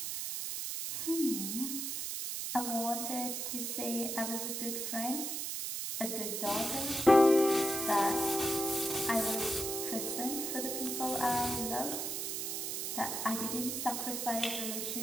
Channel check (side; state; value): right; noise; hiss, 3 dB below the sound